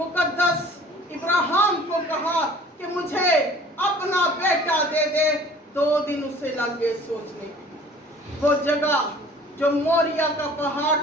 इब्राहिम को कहा कि मुझे अपना बेटा दे दे। 2 दिन उसे लग गए सोचने की। वो जगह जो मोरिया का पहाड़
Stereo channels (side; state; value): both; normal; correlation 0.49